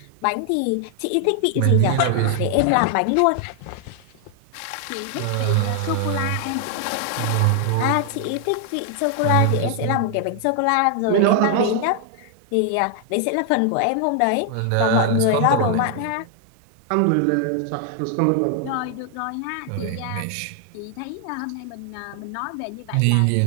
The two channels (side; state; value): both; different; correlation 0.00